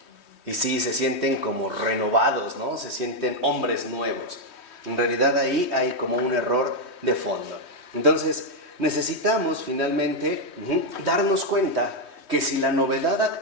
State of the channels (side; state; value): right; late; 3.2 ms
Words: Y sí, se sienten como renovados, ¿no? Se sienten hombres nuevos. En realidad ahí hay como un error de fondo. Entonces, necesitamos finalmente darnos cuenta que si la novedad